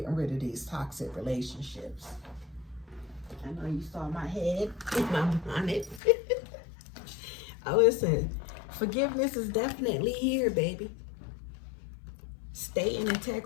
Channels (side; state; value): right; drops out; at 6.0 s